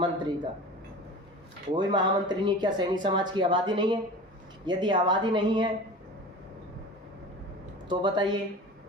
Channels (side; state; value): both; normal; correlation 0.36